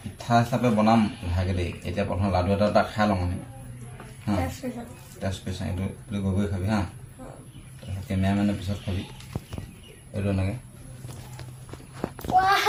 পিঠা হিচাপে বনাম ইভাগে দেই এতিয়া প্ৰথম লাডু এটা খাই লওঁ মানে হা টেষ্ট কৰি চাওঁ এইটো গৈ খাবি হা তাৰপিছত কেমেৰামেনৰ পিছত খাবি এইটো এনেকৈ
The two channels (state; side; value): identical; both; correlation 1.00